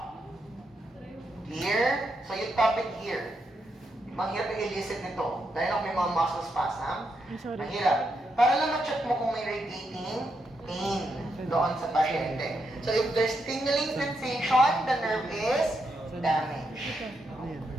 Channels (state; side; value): normal; both; correlation 0.82